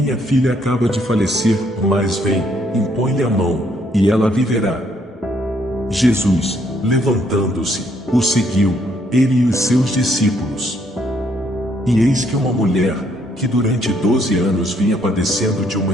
filha acaba de falecer, mas vem, impõe-lhe a mão, e ela viverá. Jesus, levantando-se, o seguiu, ele e os seus discípulos. E eis que uma mulher, que durante 12 anos vinha padecendo de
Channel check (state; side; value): normal; both; correlation 0.69